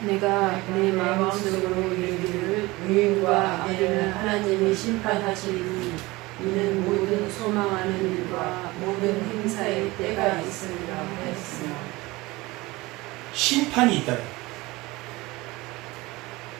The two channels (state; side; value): quieter; left; 21.3 dB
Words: 내가 내 마음속으로 이르기를 의인과 악인을 하나님이 심판하시리니 이는 모든 소망하는 일과 모든 행사의 때가 있으리라 하였으나. 심판이 있다.